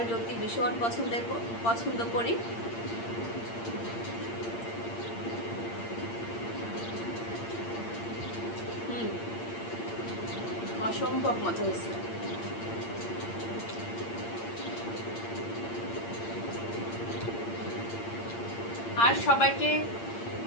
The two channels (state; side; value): late; right; 8.7 ms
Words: লতি ভীষণ পছন্দ করি। অসম্ভব মজা হয়েছে। আর সবাইকে